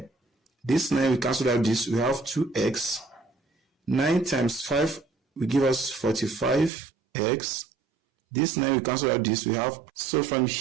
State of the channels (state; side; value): drops out; left; at 6.7 s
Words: This 9 we cancel out this, we have 2x. 9 times 5 will give us 45x. This 9 we cancel out this, we have. So from